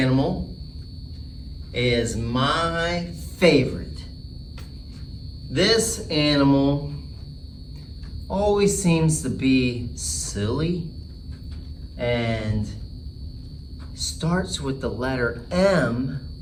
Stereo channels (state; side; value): identical; both; correlation 1.00